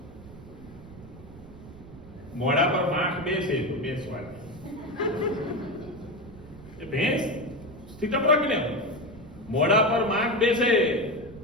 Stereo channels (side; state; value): right; noise; rumble, 18 dB below the sound